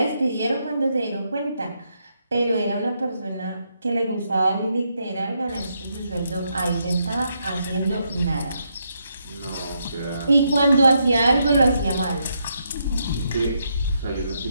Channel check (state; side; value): inverted; both; correlation -0.79